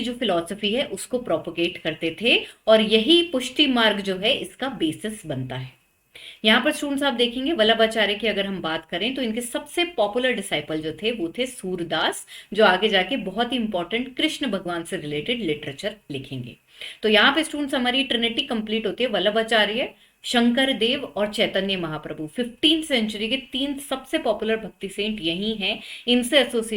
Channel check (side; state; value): both; identical; correlation 1.00